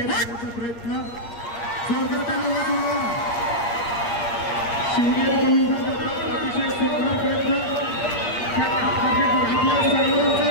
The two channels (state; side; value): late; right; 8.5 ms